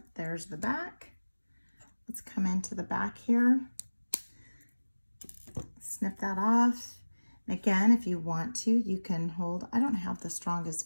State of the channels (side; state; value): both; inverted; correlation -1.00